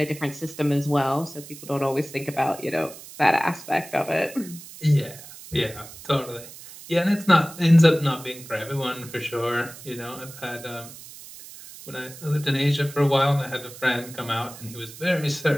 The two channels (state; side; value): noise; right; hiss, 16 dB below the sound